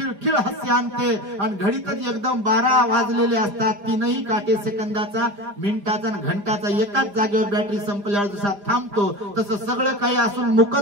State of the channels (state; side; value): late; left; 5.0 ms